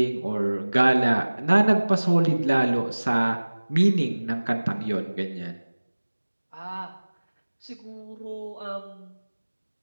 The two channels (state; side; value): inverted; both; correlation -1.00